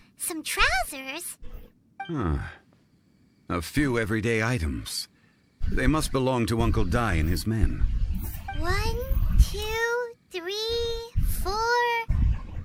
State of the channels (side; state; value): both; identical; correlation 1.00